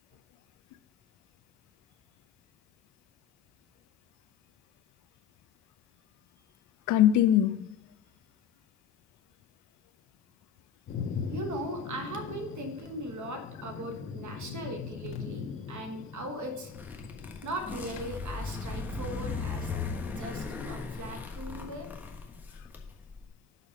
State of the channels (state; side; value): quieter; right; 6.6 dB